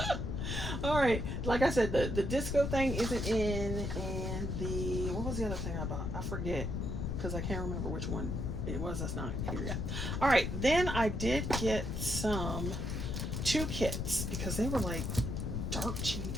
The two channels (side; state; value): left; noise; rumble, 2 dB below the sound